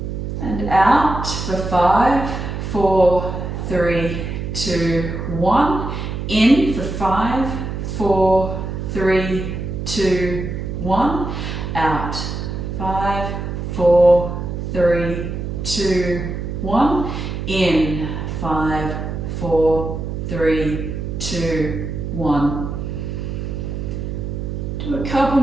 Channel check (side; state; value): right; noise; hum, 5 dB below the sound